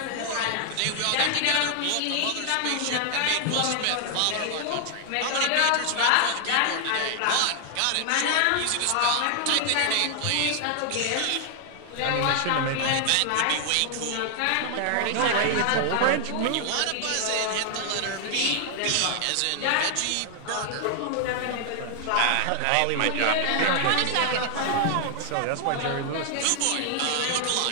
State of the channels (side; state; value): both; different; correlation 0.00